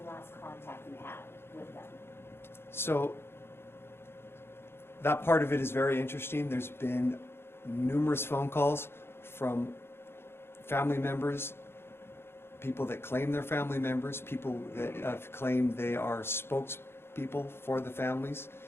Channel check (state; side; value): late; right; 0.11 ms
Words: last contact you had with them? So that part of it is very interesting. There's been numerous phone calls from family members, people that claim they're family members, people that have claimed they are spokespeople for the families.